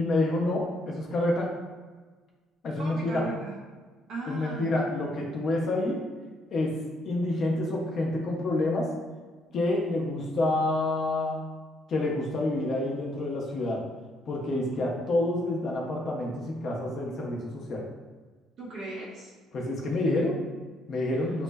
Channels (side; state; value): both; normal; correlation 0.73